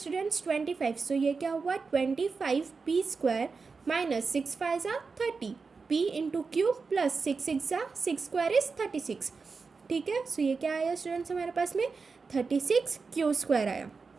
25, सो ये क्या हुआ 25p स्क्वायर माइनस 6 5 जा 30 p इंटू क्यूब प्लस 6 6 जा 6 स्क्वायर इज 36। ठीक है, सो ये क्या आया स्टूडेंट्स हमारे पास में 36 क्यू स्क्वायर आया।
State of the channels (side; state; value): left; quieter; 4.7 dB